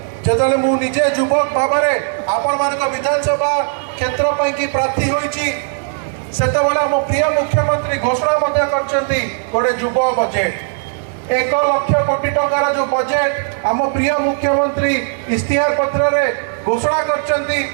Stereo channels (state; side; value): silent; left; digital silence